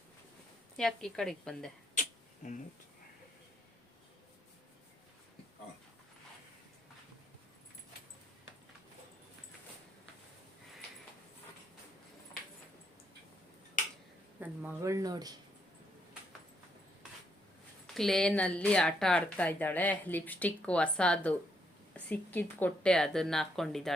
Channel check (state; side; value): normal; both; correlation 0.75